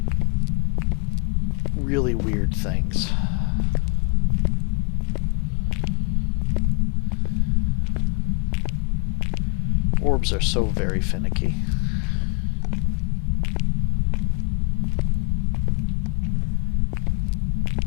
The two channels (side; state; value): right; quieter; 32.7 dB